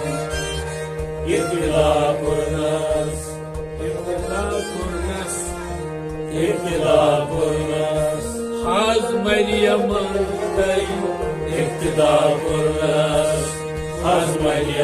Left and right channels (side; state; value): both; identical; correlation 1.00